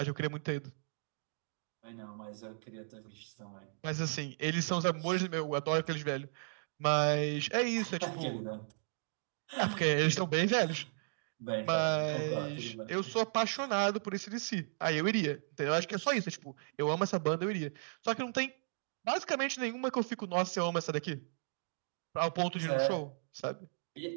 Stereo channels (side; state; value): left; silent; digital silence